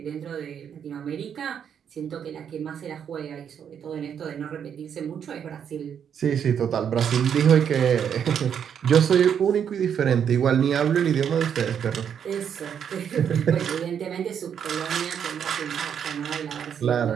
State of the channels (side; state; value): left; quieter; 8.2 dB